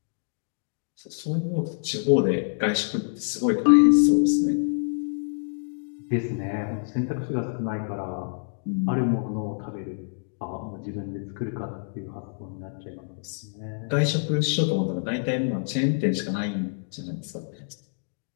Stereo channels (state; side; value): silent; right; digital silence